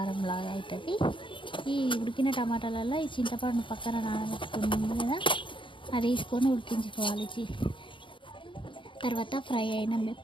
అవుతుంది. ఈ ఉడికిన టమాటాలలో ఈ చింతపండు పక్కన నానబెట్టుకుంది కదా, అది వేసుకొని ఉడికించుకోవాలి. తర్వాత ఫ్రై అయిన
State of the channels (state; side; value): late; right; 0.24 ms